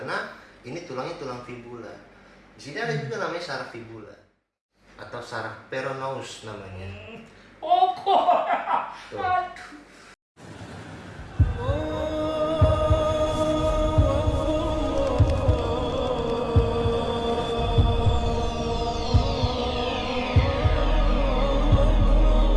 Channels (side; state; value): both; identical; correlation 1.00